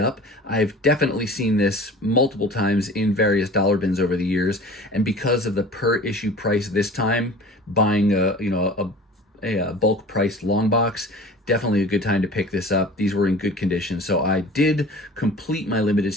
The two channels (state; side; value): normal; both; correlation 0.41